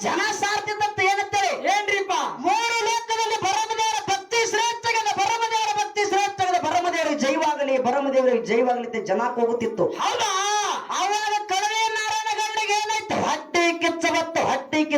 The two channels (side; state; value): both; identical; correlation 1.00